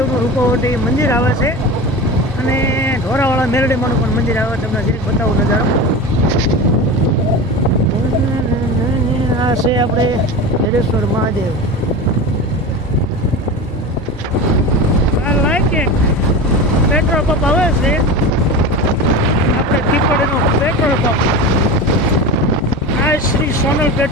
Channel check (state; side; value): normal; both; correlation 0.28